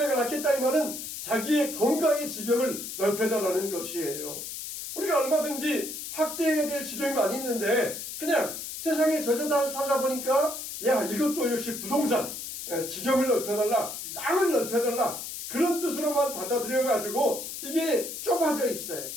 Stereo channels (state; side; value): noise; left; hiss, 8 dB below the sound